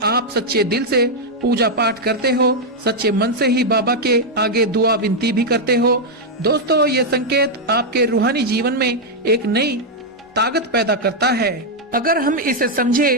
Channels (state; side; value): normal; both; correlation -0.01